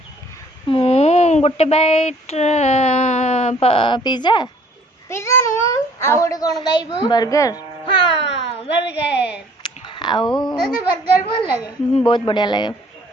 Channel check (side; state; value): both; normal; correlation 0.57